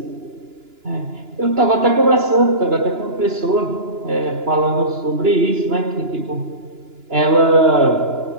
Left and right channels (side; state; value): left; late; 2.9 ms